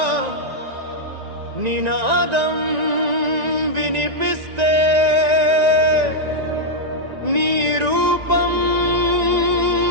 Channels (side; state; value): left; late; 1.9 ms